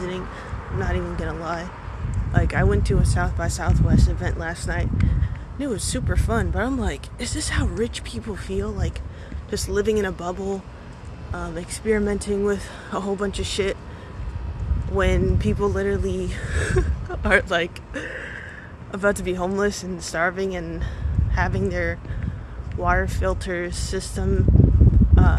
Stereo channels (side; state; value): both; identical; correlation 1.00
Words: I'm not even gonna lie. Like, I went to a South by Southwest event last night, and it was super fun, but I'm like, is this how rich people feel? Like, just living in a bubble, experimenting with a whole bunch of shit, when people literally are, like, about to be homeless and starving and having their water filter system